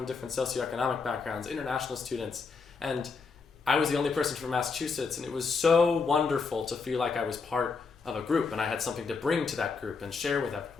different socioeconomic backgrounds, international students. And I was the only person from Massachusetts, and it was so wonderful to feel like I was part of a group and I had something to bring to that group and share with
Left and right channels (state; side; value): quieter; right; 4.9 dB